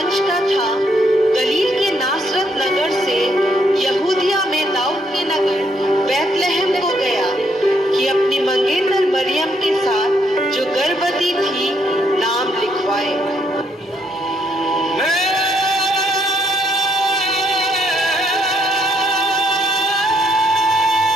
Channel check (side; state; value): both; normal; correlation 0.72